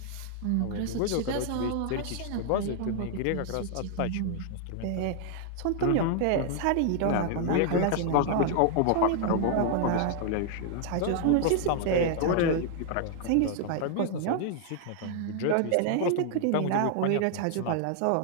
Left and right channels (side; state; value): both; different; correlation 0.00